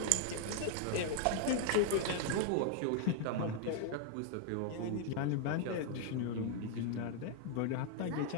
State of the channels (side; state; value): both; different; correlation 0.00